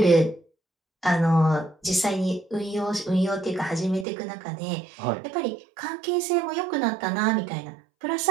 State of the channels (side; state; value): left; drops out; at 4.0 s